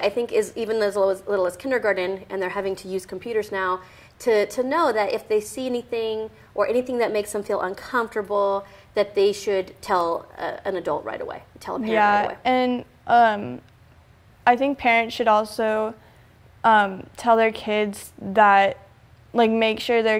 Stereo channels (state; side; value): identical; both; correlation 1.00